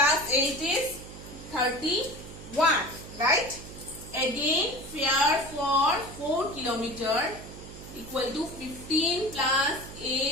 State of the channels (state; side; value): noise; right; hum, 14 dB below the sound